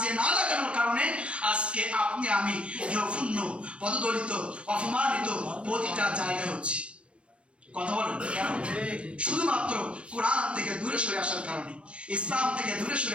না লাগানোর কারণে আজকে আপনি আমি জঘন্য, পদদলিত, অপমানিত প্রতিটা জায়গায় হচ্ছি। কথা বলেন কেন? শুধুমাত্র কোরআন থেকে দূরে সরে আসার কারণে, ইসলাম থেকে দূরে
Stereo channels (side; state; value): left; late; 0.059 ms